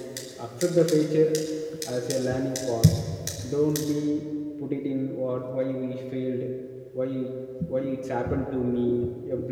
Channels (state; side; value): identical; both; correlation 1.00